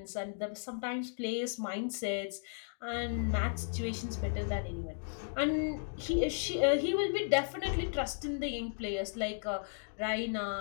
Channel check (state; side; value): silent; right; digital silence